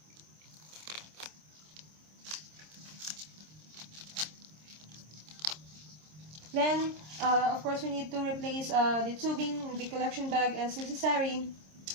Then, of course, we need to replace the tubing in the collection bag as necessary,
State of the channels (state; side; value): late; left; 26 ms